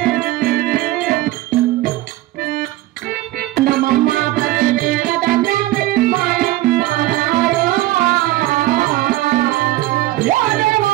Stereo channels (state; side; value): quieter; left; 16.7 dB